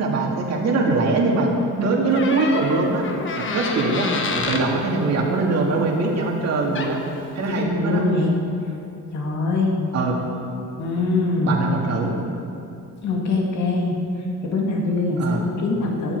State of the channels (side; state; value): both; normal; correlation 0.34